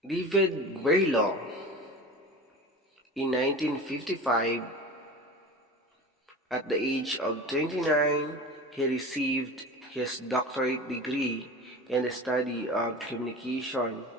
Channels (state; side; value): normal; both; correlation 0.33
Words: David Berlo, in 1955, at the age of 29, he received his doctorate degree in the study of communication